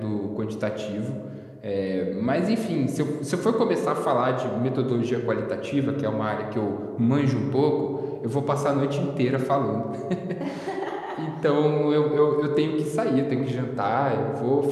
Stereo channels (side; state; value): both; identical; correlation 1.00